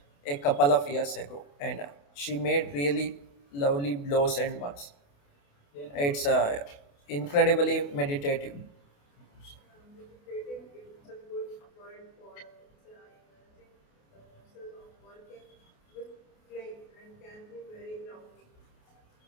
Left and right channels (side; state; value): right; late; 28 ms